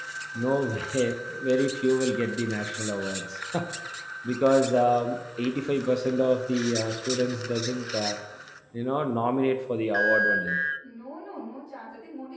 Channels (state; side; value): identical; both; correlation 1.00